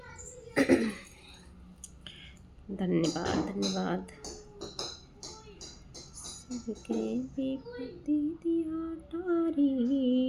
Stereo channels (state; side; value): identical; both; correlation 1.00